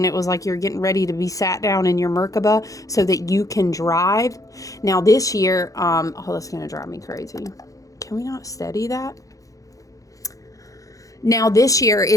it was like you're getting ready to be sat down in your Merkaba so that you can drive. Now this year, that's going to drive me crazy. Can we not steady that? Now this year,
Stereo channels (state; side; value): late; right; 0.16 ms